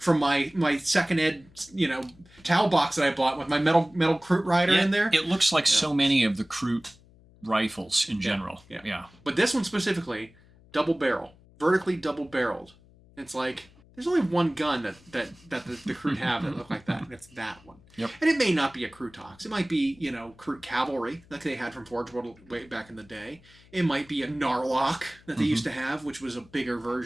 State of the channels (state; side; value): noise; left; hum, 27 dB below the sound